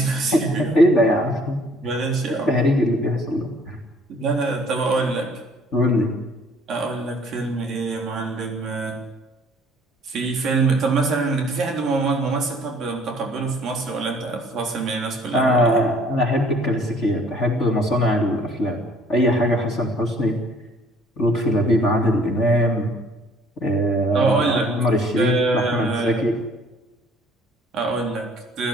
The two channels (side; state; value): both; normal; correlation 0.57